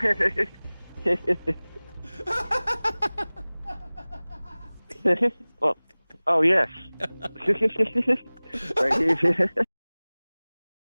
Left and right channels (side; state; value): both; inverted; correlation -1.00